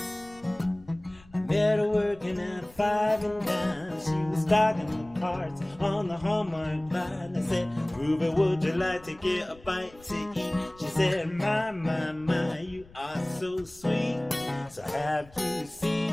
I met her working at 5 and dime. She was stocking the cards on the Hallmark line. I said, Ruby, would you like to get a bite to eat? She said, my, you are so sweet. So have you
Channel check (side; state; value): left; noise; rumble, 25 dB below the sound